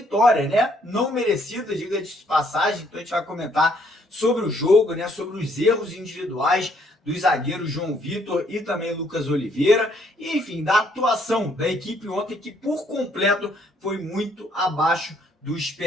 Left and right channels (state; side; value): normal; both; correlation 0.67